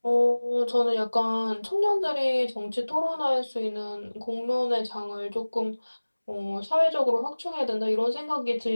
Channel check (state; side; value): inverted; both; correlation -1.00